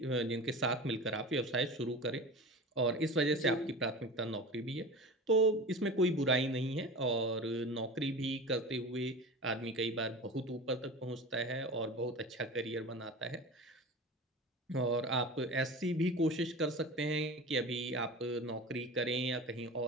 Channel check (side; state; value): both; normal; correlation 0.33